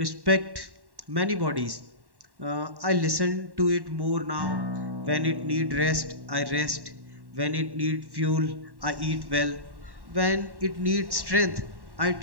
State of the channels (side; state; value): left; late; 1.1 ms